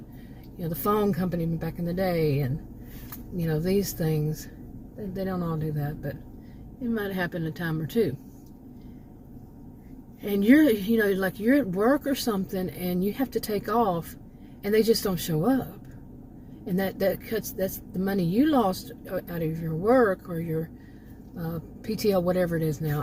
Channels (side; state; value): both; identical; correlation 1.00